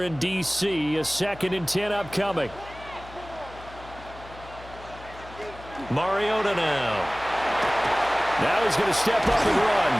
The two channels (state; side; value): noise; left; hum, 18 dB below the sound